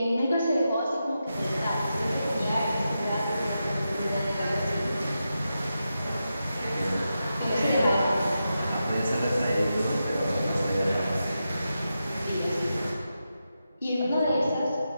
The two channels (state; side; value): inverted; both; correlation -0.89